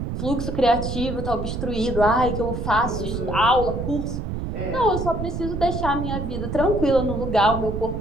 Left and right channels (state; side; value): noise; right; rumble, 4 dB below the sound